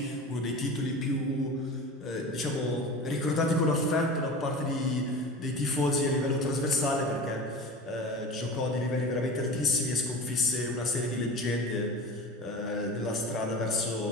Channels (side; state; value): both; normal; correlation 0.33